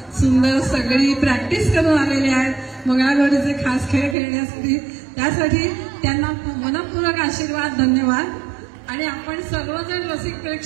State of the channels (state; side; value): drops out; left; at 4.2 s